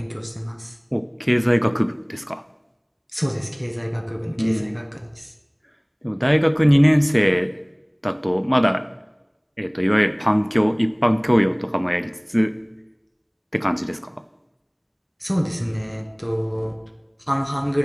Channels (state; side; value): identical; both; correlation 1.00